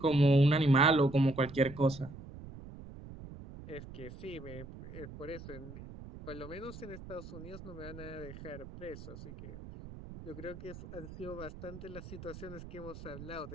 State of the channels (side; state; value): right; noise; rumble, 13 dB below the sound